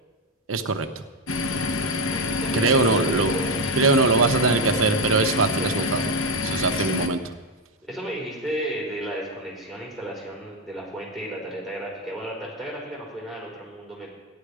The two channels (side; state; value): both; normal; correlation 0.07